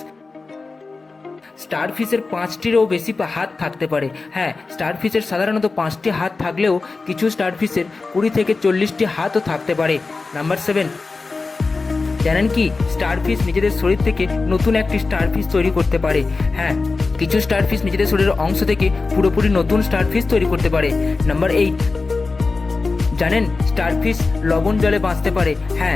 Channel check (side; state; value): right; quieter; 3.9 dB